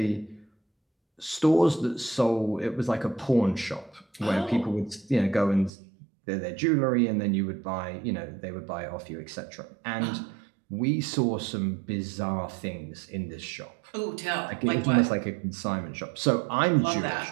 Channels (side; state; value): left; drops out; at 5.7 s